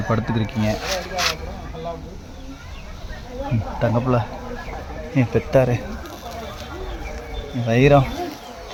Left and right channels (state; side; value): identical; both; correlation 1.00